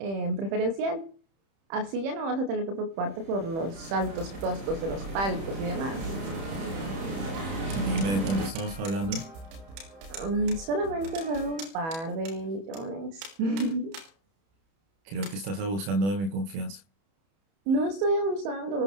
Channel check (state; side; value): late; left; 31 ms